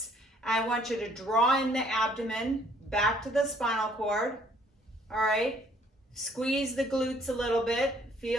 I want you to draw in the abdomen back to the spinal cord. All right. Squeeze the glutes a little bit.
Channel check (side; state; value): both; normal; correlation 0.62